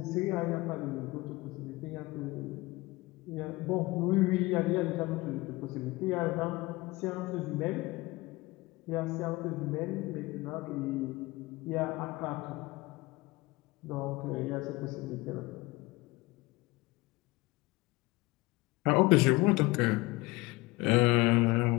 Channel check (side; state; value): right; quieter; 21.5 dB